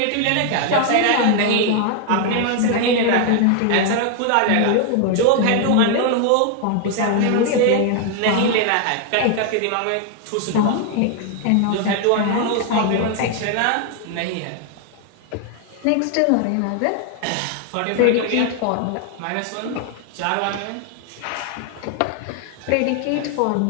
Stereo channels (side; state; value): both; different; correlation 0.00